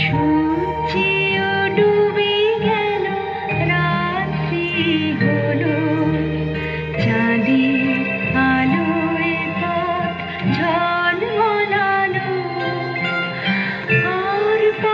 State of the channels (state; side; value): identical; both; correlation 1.00